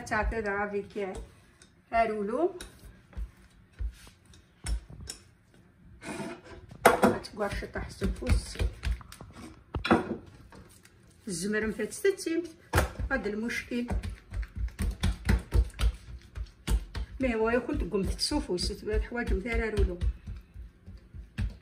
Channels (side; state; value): both; identical; correlation 1.00